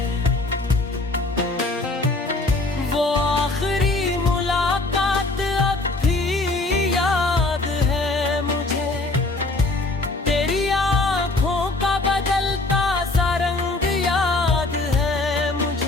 वो आखिरी मुलाकात अब भी याद है मुझे, तेरी आँखों का बदलता सा रंग याद है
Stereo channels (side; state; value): right; quieter; 3.1 dB